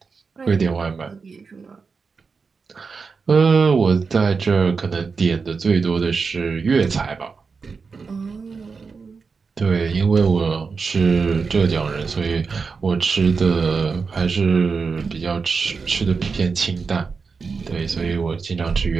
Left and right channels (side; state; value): left; quieter; 5.0 dB